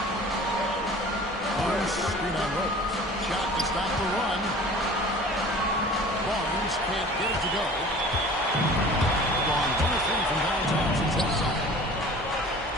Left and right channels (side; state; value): both; normal; correlation 0.44